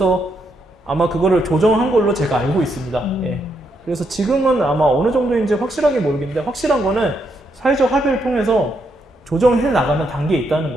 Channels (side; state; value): both; normal; correlation 0.78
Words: 아마 그거를 조정한 걸로 제가 알고 있습니다. 예. 그래서 지금은 아마 어느 정도인지 확실하게 모르겠는데 확실한 거는 사회적 합의를 통해서 조정해 나가는 단계에 있다는